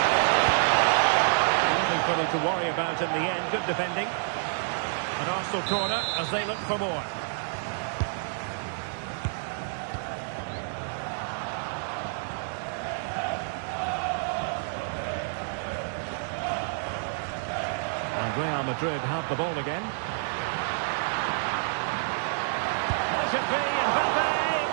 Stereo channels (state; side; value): silent; left; digital silence